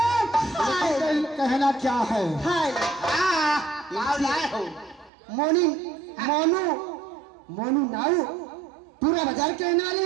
कहना क्या है, मोनी मोनू मोनू नाऊ पूरा बाजार कहने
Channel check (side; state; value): left; drops out; at 5.1 s